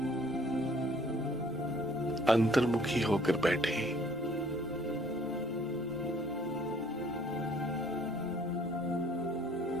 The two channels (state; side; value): normal; both; correlation 0.59